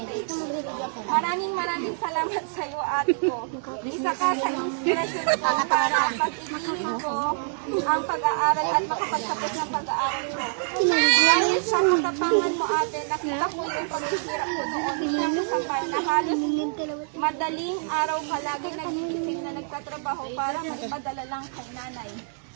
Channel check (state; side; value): silent; left; digital silence